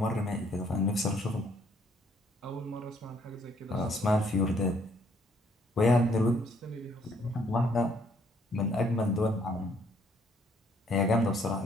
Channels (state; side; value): normal; both; correlation 0.66